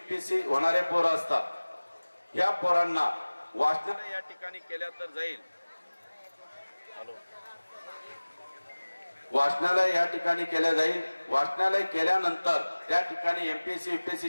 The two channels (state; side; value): inverted; both; correlation -1.00